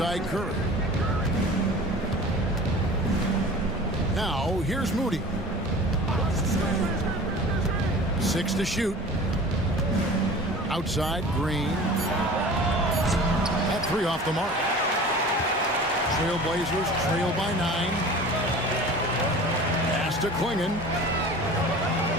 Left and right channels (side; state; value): both; normal; correlation 0.40